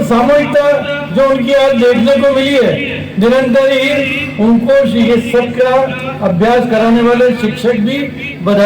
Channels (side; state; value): both; identical; correlation 1.00